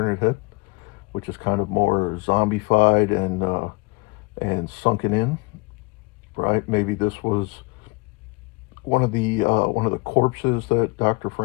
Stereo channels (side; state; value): right; quieter; 26.8 dB